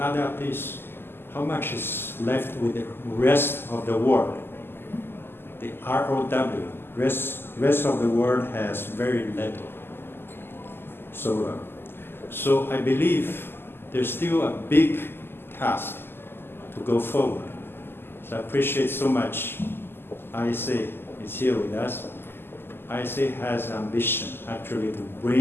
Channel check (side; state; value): right; late; 0.11 ms